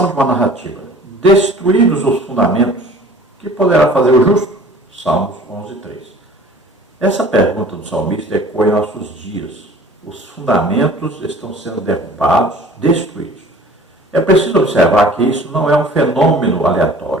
de uma narrativa. Destruídos os fundamentos, que poderá fazer o justo? Salmos 11:3. Essa pergunta do salmista ecoa em nossos dias. Os fundamentos estão sendo derrubados, destruídos. É preciso observar que isso não é um fenômeno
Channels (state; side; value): normal; both; correlation 0.47